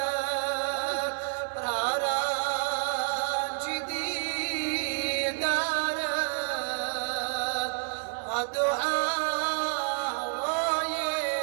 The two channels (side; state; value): left; silent; digital silence